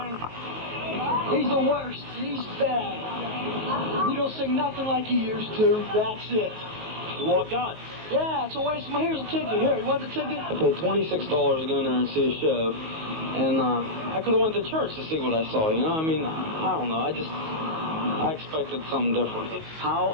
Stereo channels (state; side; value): late; left; 19 ms